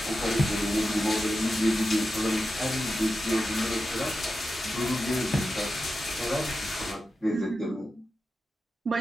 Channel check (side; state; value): both; normal; correlation 0.90